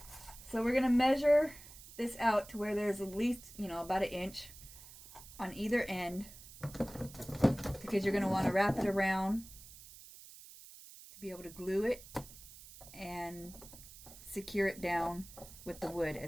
So we're going to measure this out to where there's at least, about an inch on either end, because you're going to want to wrap it around to be able to glue it and secure it down with the wood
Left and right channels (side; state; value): right; noise; hiss, 17 dB below the sound